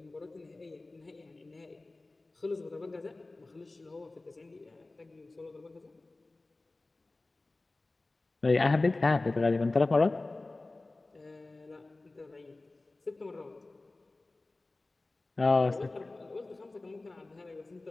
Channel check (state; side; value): quieter; right; 3.1 dB